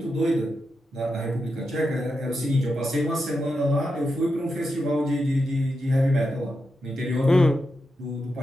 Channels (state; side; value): normal; both; correlation 0.87